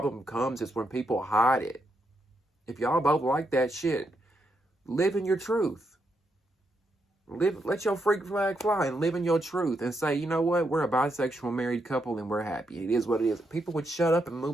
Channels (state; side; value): normal; both; correlation 0.81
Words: comes is when people hide it. If y'all both like that shit, live in your truth. Let your freak flag fly and live in your truth and say, you know what? We're a bisexual married couple and we're happy. It is what it is. People would shut up and